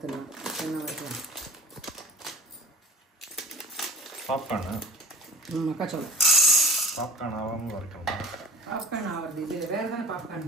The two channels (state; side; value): normal; both; correlation 0.42